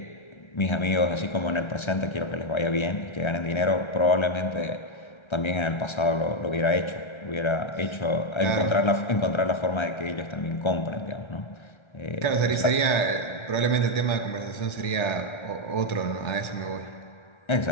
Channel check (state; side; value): late; right; 1.3 ms